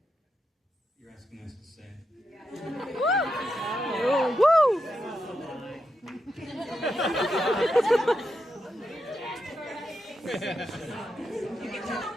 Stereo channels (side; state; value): both; normal; correlation 0.85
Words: You're asking us to say. Woo!